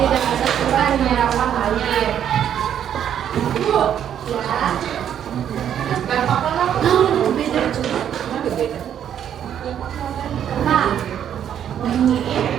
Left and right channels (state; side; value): quieter; left; 9.6 dB